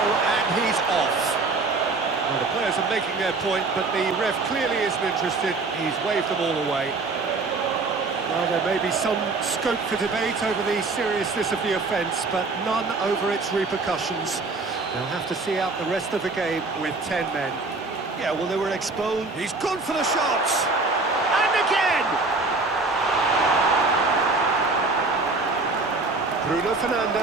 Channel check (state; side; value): quieter; left; 3.7 dB